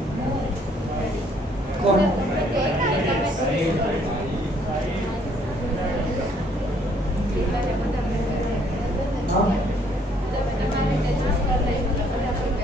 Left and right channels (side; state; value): both; normal; correlation 0.65